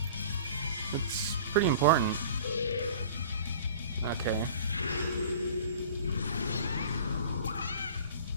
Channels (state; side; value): inverted; both; correlation -0.44